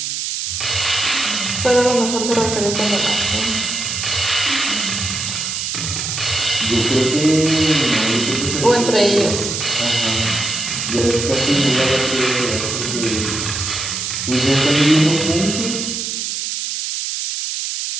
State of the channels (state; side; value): noise; right; hiss, 3 dB below the sound